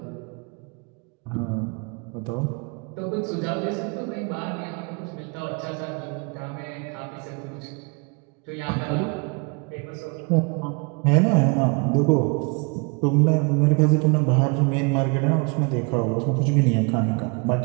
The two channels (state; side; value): quieter; left; 31.9 dB